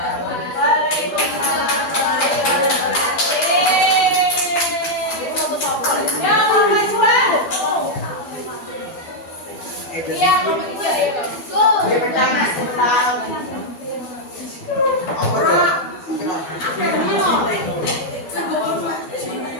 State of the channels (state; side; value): late; right; 12 ms